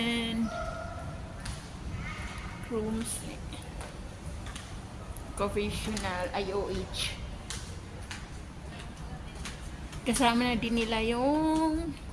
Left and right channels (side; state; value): both; identical; correlation 1.00